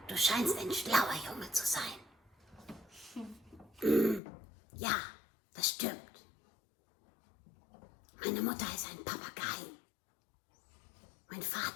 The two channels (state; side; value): drops out; right; at 4.2 s